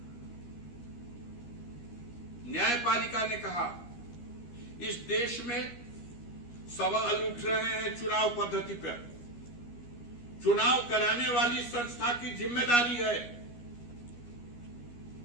ने कहा इस देश में सवाल उठ रहे हैं चुनाव पद्धति पर। चुनाव कराने वाली संस्था की जिम्मेदारी है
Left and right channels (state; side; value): late; right; 13 ms